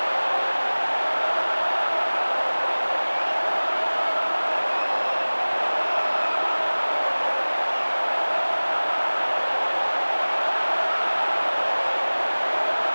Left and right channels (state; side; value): inverted; both; correlation -1.00